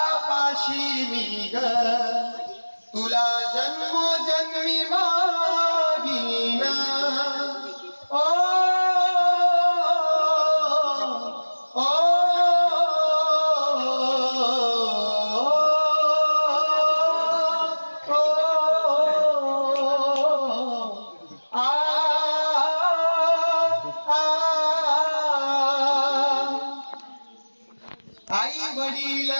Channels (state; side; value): inverted; both; correlation -1.00